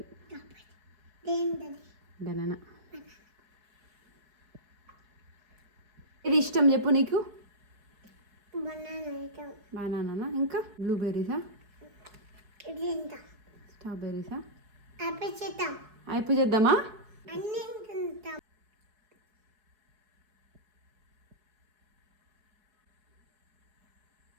బనానా. ఇది ఇష్టం చెప్పు నీకు? బనానా. ఇంకా బ్లూబెర్రీసా? స్ట్రాబెర్రీసా? అయిపోయి చేద్దామా?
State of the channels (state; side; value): late; left; 4.7 ms